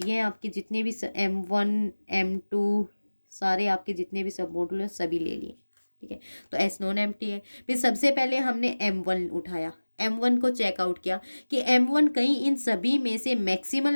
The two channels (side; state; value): both; inverted; correlation -1.00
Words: हैं आपके जितने भी M1 M2 सारे आपके जितने भी सब मॉडुल हैं सभी ले लिए। ठीक है, तो S नॉन एम्प्टी है। फिर सबसे पहले हमने M1 उठाया, M1 को चेकआउट किया कि M1 कहीं इन सभी में से